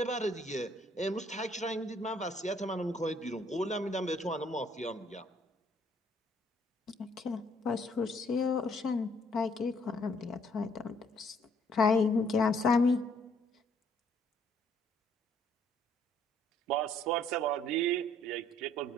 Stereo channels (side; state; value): both; normal; correlation 0.65